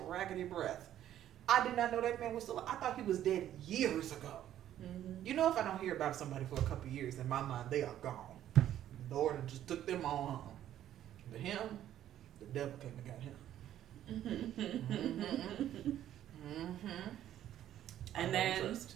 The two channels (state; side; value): quieter; left; 11.7 dB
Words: raggedy breath. I did not know that man was still. I thought he was dead years ago. Mm-hmm. You know, if I don't hear about somebody for a couple of years, in my mind they are gone. The Lord just took them on home. But him, the devil came and got him. And then